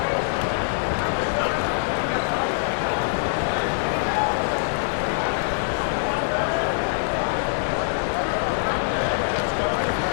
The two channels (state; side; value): silent; right; digital silence